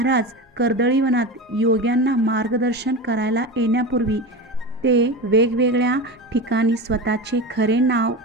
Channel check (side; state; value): both; normal; correlation 0.25